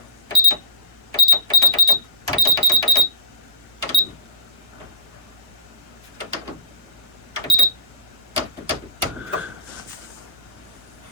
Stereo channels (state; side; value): normal; both; correlation -0.17